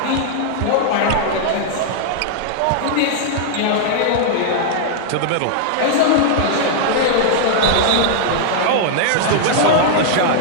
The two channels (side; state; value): both; different; correlation -0.01